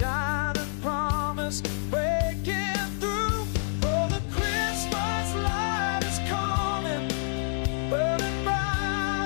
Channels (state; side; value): silent; right; digital silence